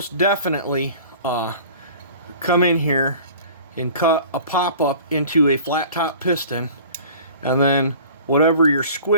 definitely come in here and cut a pop-up into a flat top piston, and then whatever your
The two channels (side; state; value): both; inverted; correlation -0.45